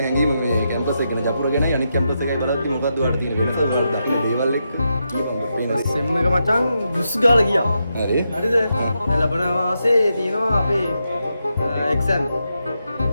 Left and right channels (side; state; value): both; inverted; correlation -0.85